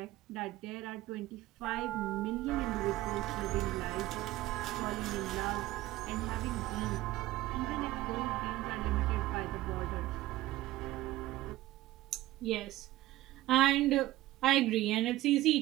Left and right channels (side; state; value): left; quieter; 16.3 dB